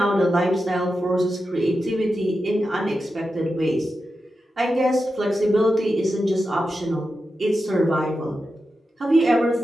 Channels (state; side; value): normal; both; correlation 0.90